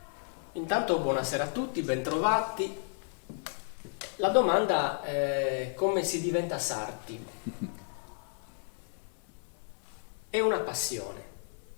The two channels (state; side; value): silent; right; 56 dB below the other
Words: Intanto buonasera a tutti, bentrovati. La domanda è come si diventa sarti? È una passione,